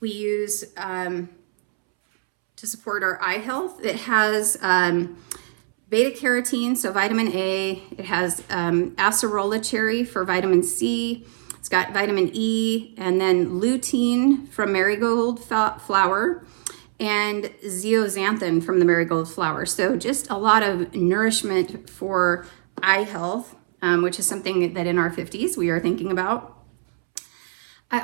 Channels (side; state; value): left; silent; 64 dB below the other